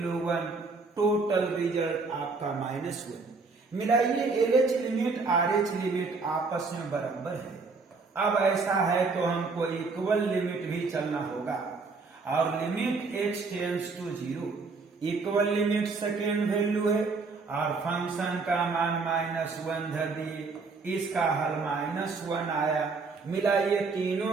1, टोटल रिजल्ट आपका -1। मिलाइए LH लिमिट RH लिमिट आपस में बराबर है। अब ऐसा है तो हमको इक्वल लिमिट भी चलना होगा, और limit x tends to 0, equal limit second value है, और फंक्शन का मान -1 धर दिए, इसका हल -1 आया। मिलाइए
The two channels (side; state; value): left; quieter; 4.2 dB